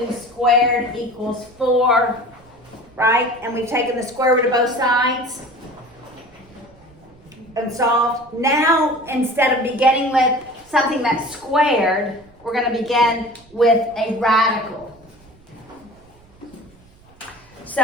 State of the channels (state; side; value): noise; right; rumble, 27 dB below the sound